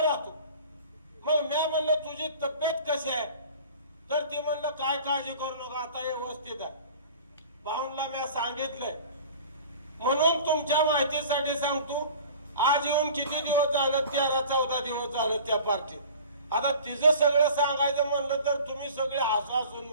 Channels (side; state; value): both; inverted; correlation -0.42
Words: राहतो. मग मी म्हणलं तुझी तब्येत कशी आहे? तर ती म्हणलं काय काळजी करू नका, आता व्यवस्थित आहे. भाऊंला मी सांगितलंय. म्हणून तुमच्या माहितीसाठी सांगतो, आज येऊन किती दिवस झालं, 13-14 दिवस झालं त्या पार्टीत. आता तिचं सगळं सांगायचं म्हणलं तर तुम्ही सगळे हसून